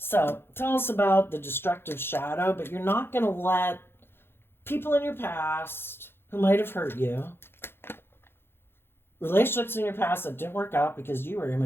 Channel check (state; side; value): late; right; 0.11 ms